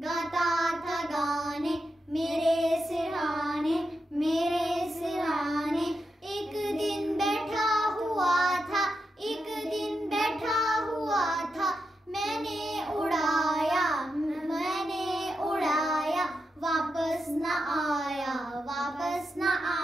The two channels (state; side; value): normal; both; correlation 0.87